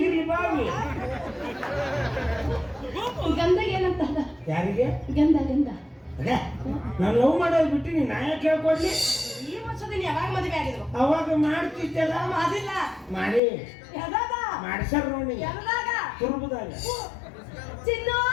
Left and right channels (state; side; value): drops out; right; at 13.4 s